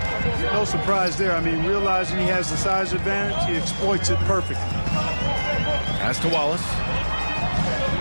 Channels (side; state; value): both; inverted; correlation -1.00